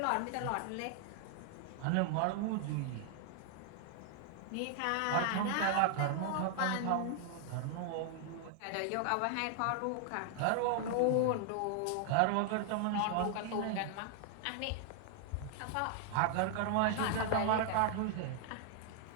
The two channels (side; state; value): both; different; correlation 0.00